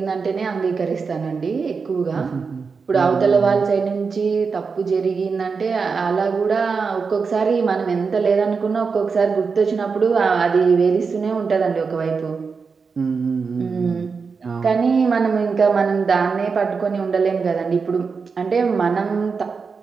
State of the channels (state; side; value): quieter; left; 5.2 dB